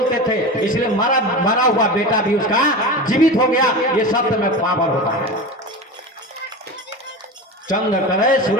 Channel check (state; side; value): normal; both; correlation 0.27